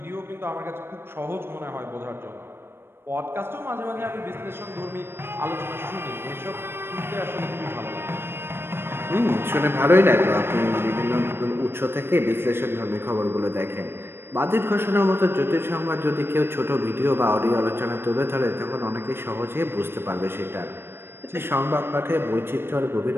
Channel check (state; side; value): late; left; 0.11 ms